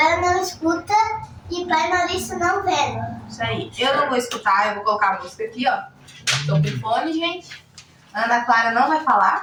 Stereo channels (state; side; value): identical; both; correlation 1.00